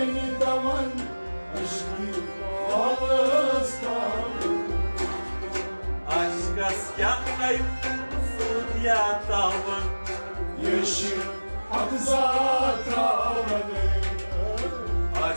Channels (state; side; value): inverted; both; correlation -1.00